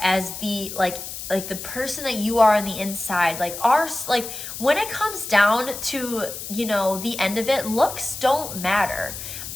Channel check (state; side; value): noise; left; hiss, 9 dB below the sound